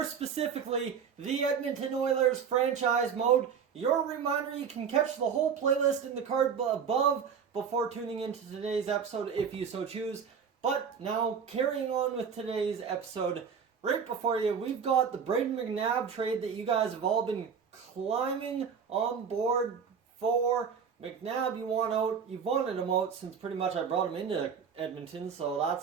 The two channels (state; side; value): quieter; left; 6.8 dB